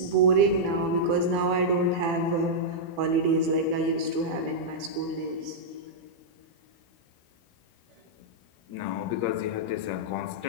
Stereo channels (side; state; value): left; late; 18 ms